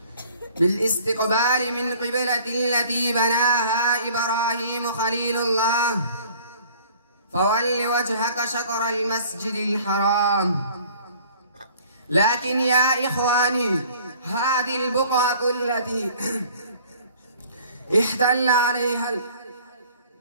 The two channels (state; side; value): inverted; both; correlation -0.52